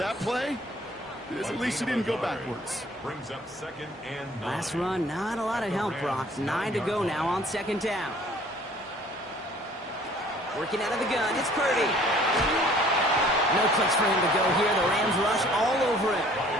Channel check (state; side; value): normal; both; correlation 0.55